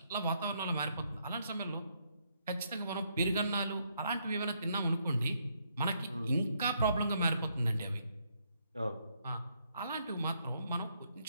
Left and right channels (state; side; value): inverted; both; correlation -0.74